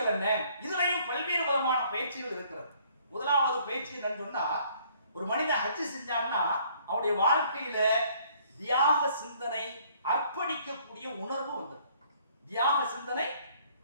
என்ன. இதுலயும் பல்வேறு விதமான பயிற்சிகள் இருக்கிறது. முதலாவது பயிற்சி என்னன்னு சொன்னா ஒரு மனிதன் ஹஜ் செஞ்சான்னா அவனுடைய வாழ்க்கையில தியாக சிந்தனை, அர்ப்பணிக்கக்கூடிய உணர்வு வந்தது. தியாக சிந்தனை,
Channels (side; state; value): both; inverted; correlation -0.61